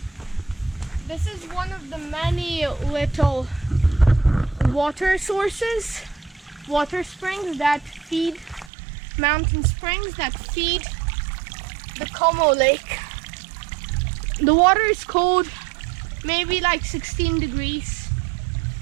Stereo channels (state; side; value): drops out; left; at 8.7 s